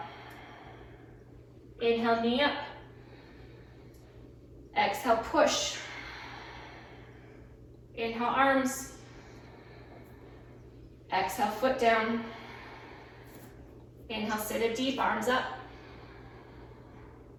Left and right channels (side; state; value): both; identical; correlation 1.00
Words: Inhale, knee up. Exhale, push. Inhale, arms. Exhale, foot down. Inhale, sit it deep, arms up.